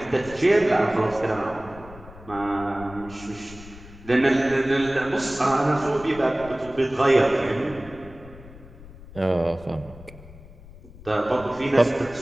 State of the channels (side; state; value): left; noise; rumble, 18 dB below the sound